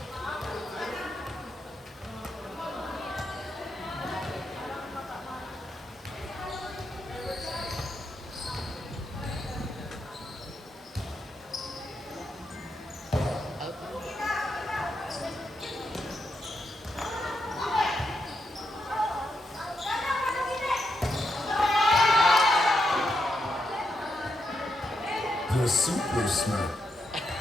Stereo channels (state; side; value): normal; both; correlation 0.83